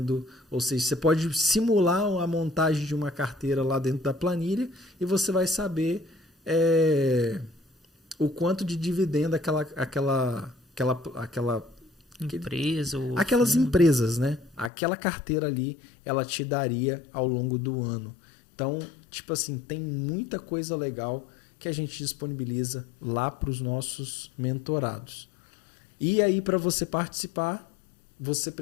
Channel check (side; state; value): right; drops out; at 14.7 s